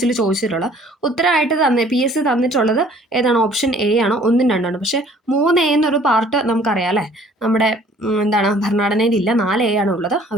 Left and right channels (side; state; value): both; normal; correlation 0.56